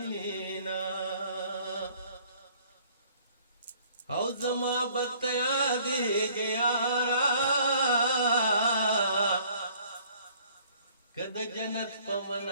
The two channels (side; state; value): both; inverted; correlation -0.57